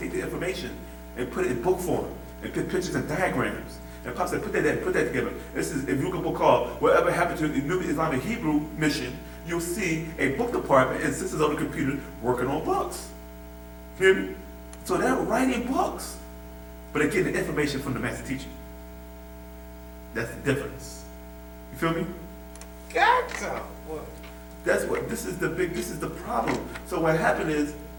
the information and put it in book form and put pictures and diagrams. And Pop said, put that together. This is, if you look at a book called Whatever Happened to the New Islamic Hebrew Mission, you'll see a book department and sisters on the computer working on books. Hear me? So they're writing books, but they're getting the information from the master teacher. That's the difference. You feel me? Gotcha. What? That's what, this is the problem. So what happened is,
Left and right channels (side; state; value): both; identical; correlation 1.00